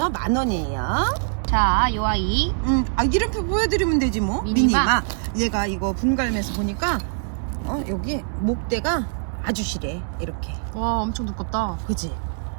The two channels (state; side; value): silent; left; digital silence